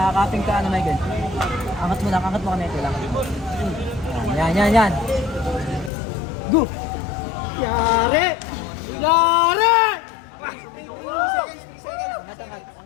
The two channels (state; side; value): drops out; right; at 5.9 s